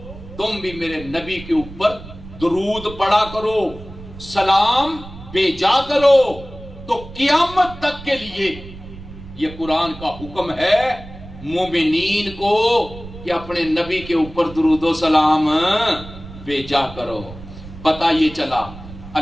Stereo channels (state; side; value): noise; right; rumble, 15 dB below the sound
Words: تم بھی میرے نبی کے اوپر درود پڑھا کرو، سلام بھیجا کرو۔ تو قیامت تک کے لیے یہ قرآن کا حکم ہے مومنین کو کہ اپنے نبی کے اوپر درود و سلام بھیجا کرو۔ پتہ یہ چلا